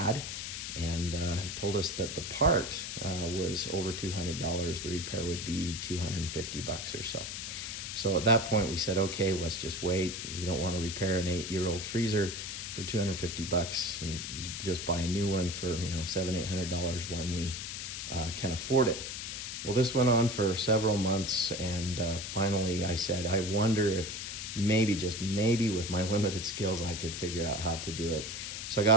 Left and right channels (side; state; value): left; noise; hiss, 6 dB below the sound